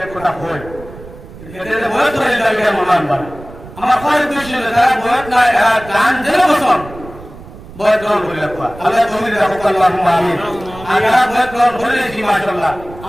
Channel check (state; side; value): noise; right; rumble, 17 dB below the sound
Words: কথা হয় এতে বই করে যাবে মমান বার আমার খরচ দৃশ্য যারা বই নাই গান জেলা বসন বই গ্রহণ করে রাখবা আল্লাহ তৌফিক রাখুক আল্লাহুম্মা আমিন আর যারা বই গ্রহণ করে নিয়েছি মাশাআল্লাহ